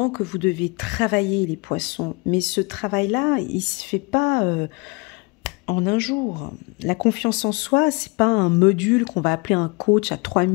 que vous devez travailler, les poissons, mais ce travail-là, il ne se fait pas en un jour. La confiance en soi, ce n'est pas un module qu'on va appeler un coach à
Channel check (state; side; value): quieter; right; 28.0 dB